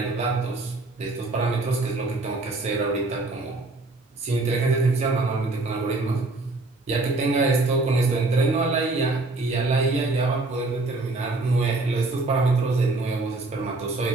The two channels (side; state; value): left; quieter; 3.2 dB